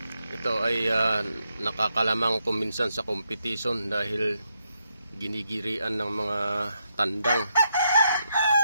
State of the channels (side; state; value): both; inverted; correlation -0.80